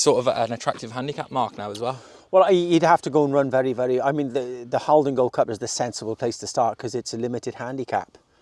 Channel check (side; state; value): both; identical; correlation 1.00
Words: sort of at an attractive handicap mark now as well? Well, he'd have to go and run very, very... I mean, the Haldon Gold Cup is the sensible place to start because it's a limited handicap.